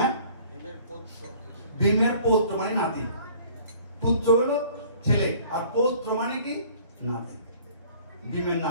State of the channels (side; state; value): both; inverted; correlation -0.52